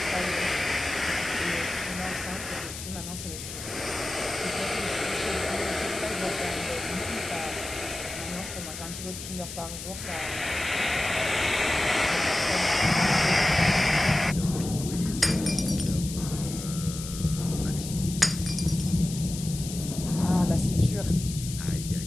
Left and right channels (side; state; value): left; noise; hiss, 10 dB below the sound